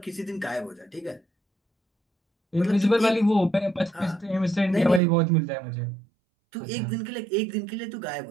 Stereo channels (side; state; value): left; drops out; at 5.0 s